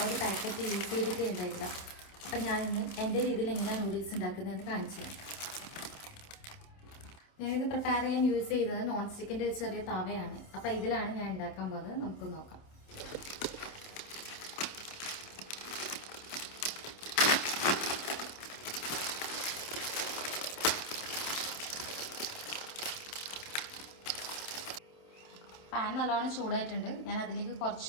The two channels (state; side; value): late; right; 27 ms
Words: ഒരു പാക്കറ്റ് യൂസ് ചെയ്തിട്ടേ ഉണ്ടായില്ല. അപ്പം ഞാനിന്ന് എൻ്റെ രീതിയിൽ എങ്ങനെയാണ് നൂഡിൽസ് ഉണ്ടാക്കുന്നതെന്ന് കാണിച്ചു തരാം. ഞാനിത് പ്രിപ്പയർ ചെയ്യാൻ യൂസ് ചെയ്തത് നോൺ സ്റ്റിക്കിൻ്റെ ഒരു ചെറിയ തവയാണ്. അപ്പോൾ ഇതിലാണ് ഞാൻ ഉണ്ടാക്കാൻ പോകുന്നത്. നമുക്ക് നോക്കാം. പാൻ നല്ലോണം ചൂടായിട്ടുണ്ട്. ഞാൻ അതിലേക്ക് കുറച്ച്